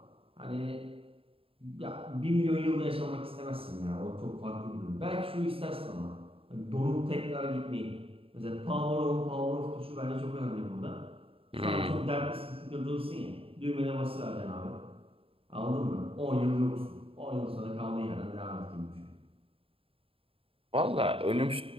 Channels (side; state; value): left; late; 0.27 ms